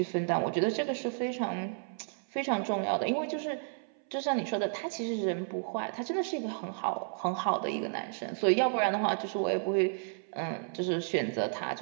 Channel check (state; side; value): silent; left; 56 dB below the other